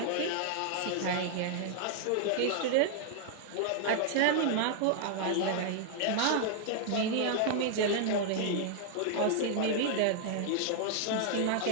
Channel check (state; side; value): different; both; correlation 0.00